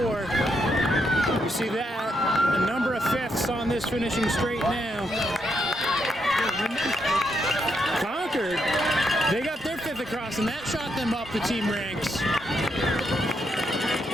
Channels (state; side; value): normal; both; correlation 0.80